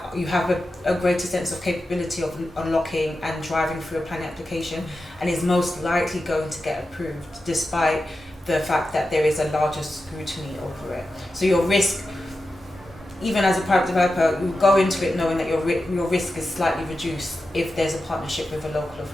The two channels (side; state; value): both; normal; correlation 0.91